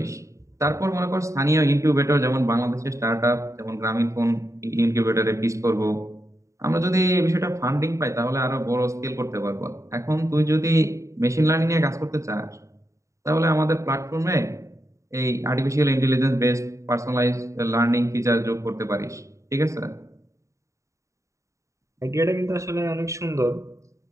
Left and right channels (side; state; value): left; late; 0.15 ms